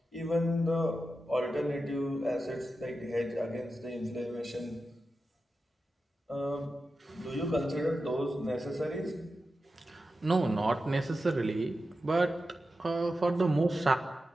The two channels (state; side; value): normal; both; correlation 0.91